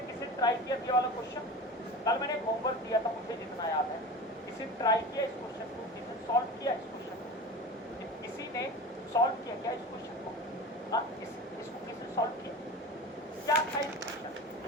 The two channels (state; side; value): normal; both; correlation 0.32